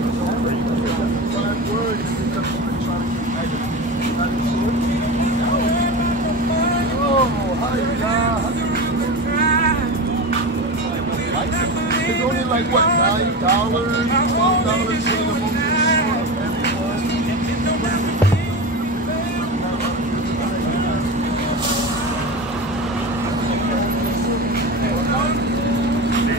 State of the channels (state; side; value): normal; both; correlation 0.25